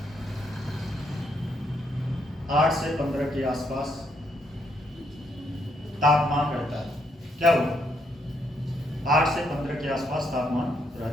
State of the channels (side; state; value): both; normal; correlation 0.75